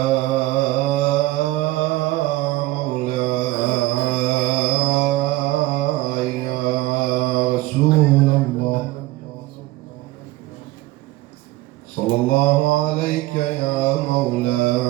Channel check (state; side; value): quieter; left; 18.3 dB